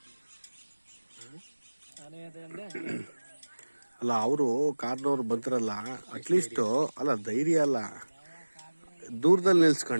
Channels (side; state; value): both; inverted; correlation -1.00